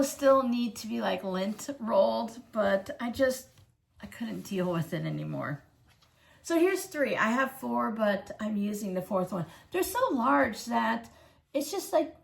still need to be like lint rolled, but I couldn't deal with it anymore. So here's 3. I have 4, but I'm using the 4th one. They're so large that it's just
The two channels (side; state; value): both; identical; correlation 1.00